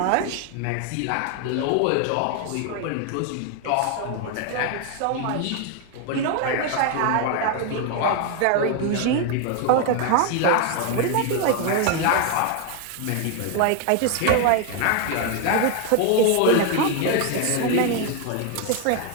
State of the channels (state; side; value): different; both; correlation 0.01